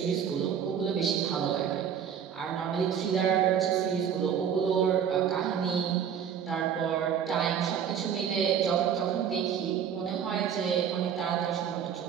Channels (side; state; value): left; quieter; 8.2 dB